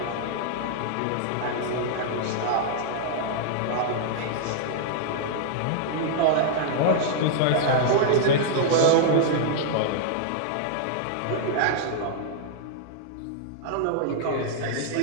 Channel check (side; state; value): both; different; correlation -0.01